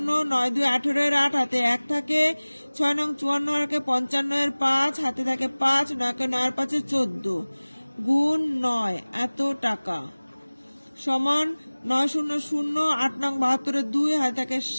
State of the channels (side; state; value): both; inverted; correlation -1.00